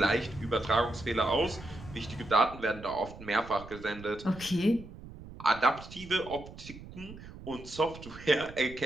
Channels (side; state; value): right; noise; rumble, 15 dB below the sound